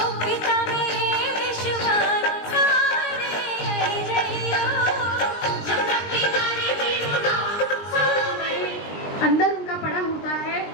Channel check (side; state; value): right; late; 20 ms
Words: अंदर उनका पड़ा होता है।